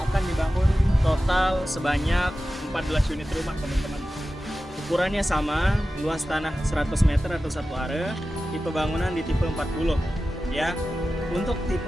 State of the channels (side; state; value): both; normal; correlation 0.94